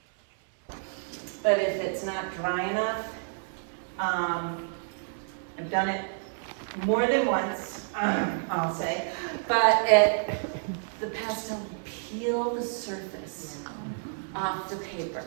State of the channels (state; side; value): silent; left; 58 dB below the other